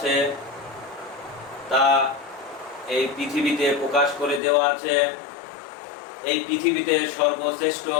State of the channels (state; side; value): drops out; right; at 4.4 s